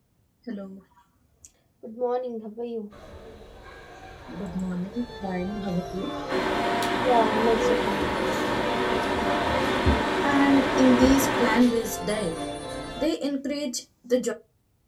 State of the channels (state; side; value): identical; both; correlation 1.00